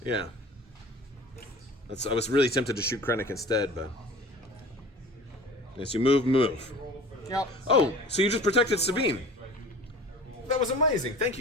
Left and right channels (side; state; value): both; normal; correlation 0.42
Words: Yeah. I was really tempted to shoot Krennic instead, but yes, you move. Yep. Oh, so you just protected Sabine. That was amazing. Thank